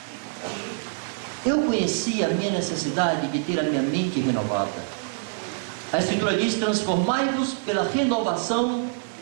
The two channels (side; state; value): left; silent; digital silence